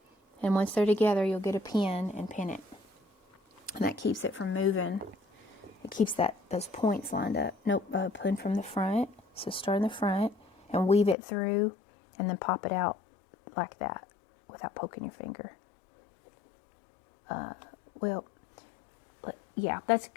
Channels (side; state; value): right; drops out; at 11.2 s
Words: And once they're together, you'll get a pin and pin it. And that keeps it from moving. It keeps those points lined up. Nope, pin from the front. So start in the front and weave it through and then pop it out like that without poking your finger. Yeah, that's